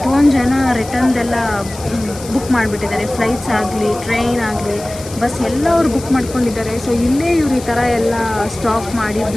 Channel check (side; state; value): left; noise; hiss, 15 dB below the sound